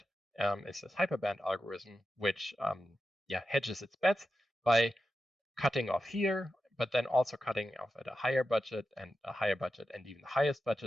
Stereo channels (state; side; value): normal; both; correlation 0.90